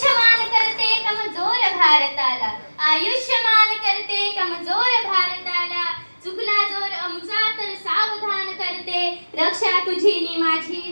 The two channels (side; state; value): both; inverted; correlation -1.00